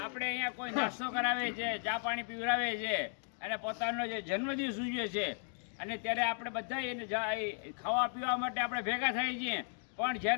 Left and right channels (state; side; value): silent; right; 54 dB below the other